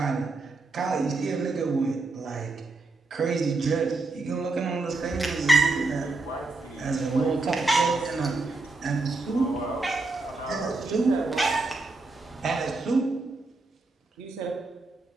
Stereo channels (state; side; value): quieter; left; 3.4 dB